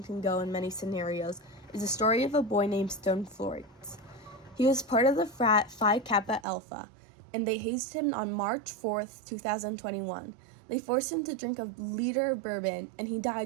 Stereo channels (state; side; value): drops out; left; at 6.5 s